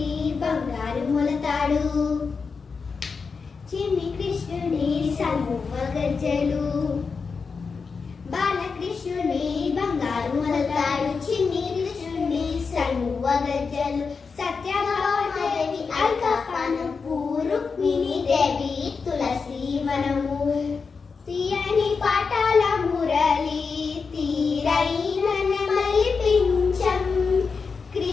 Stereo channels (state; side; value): quieter; right; 5.1 dB